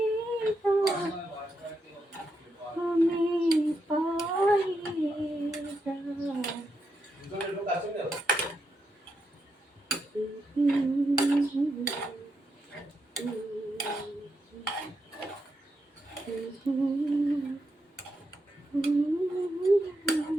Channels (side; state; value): both; normal; correlation 0.83